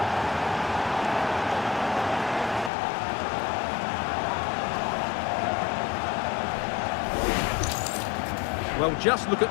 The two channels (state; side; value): drops out; right; at 2.7 s